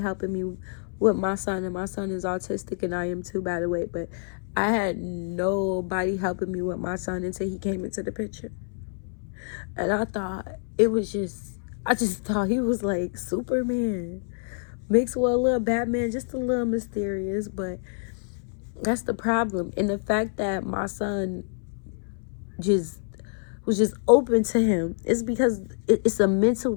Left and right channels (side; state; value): right; silent; 60 dB below the other